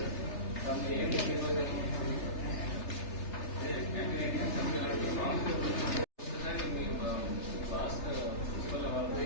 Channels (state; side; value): late; right; 3.3 ms